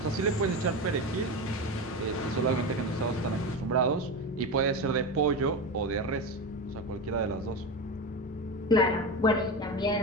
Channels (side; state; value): both; normal; correlation 0.21